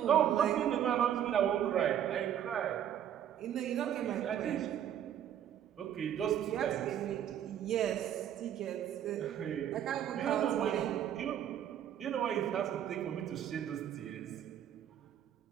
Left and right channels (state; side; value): quieter; left; 10.1 dB